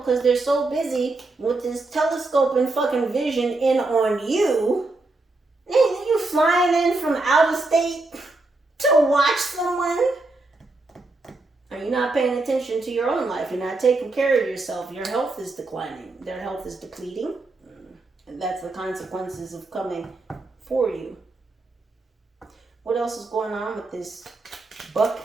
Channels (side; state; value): left; quieter; 3.2 dB